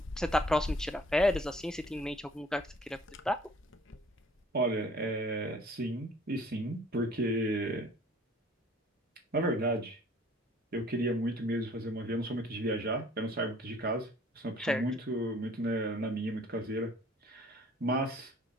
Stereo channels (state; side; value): normal; both; correlation 0.54